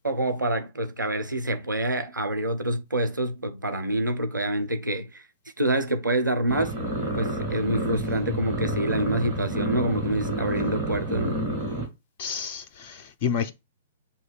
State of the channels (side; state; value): both; inverted; correlation -0.50